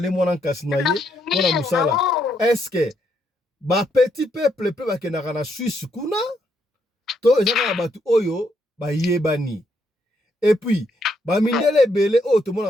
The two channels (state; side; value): normal; both; correlation 0.76